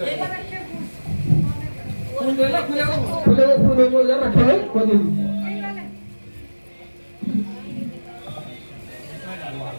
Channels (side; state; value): both; inverted; correlation -1.00